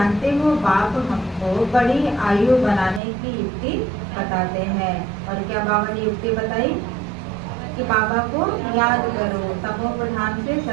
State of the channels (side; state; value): left; drops out; at 3.0 s